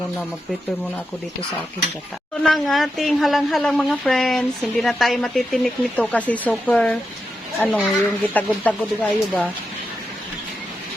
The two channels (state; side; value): normal; both; correlation 0.87